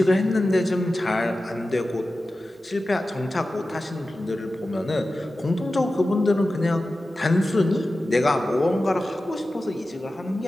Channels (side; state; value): both; normal; correlation 0.94